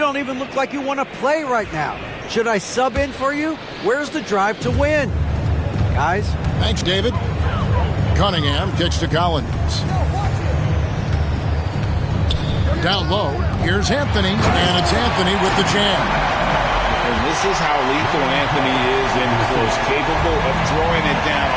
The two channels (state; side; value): identical; both; correlation 1.00